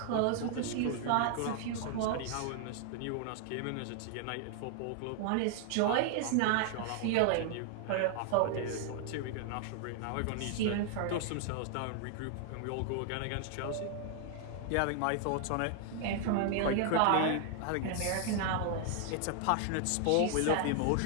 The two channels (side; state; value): both; different; correlation 0.00